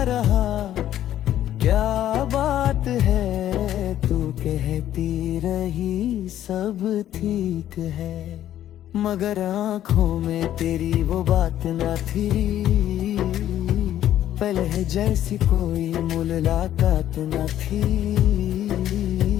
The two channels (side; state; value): right; quieter; 11.9 dB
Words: रहा क्या बात है, तू कहती रही सब ठीक है। मगर आँखों में तेरी वो बात न थी, पहले जैसी कोई मुलाकात न थी।